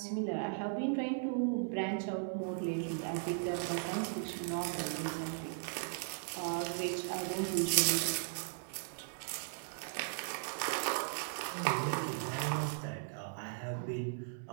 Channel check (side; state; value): left; silent; 53 dB below the other